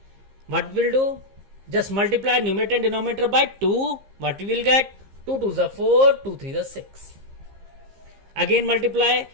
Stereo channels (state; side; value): late; left; 15 ms